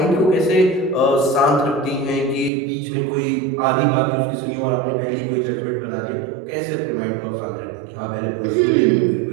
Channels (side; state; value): left; drops out; at 2.5 s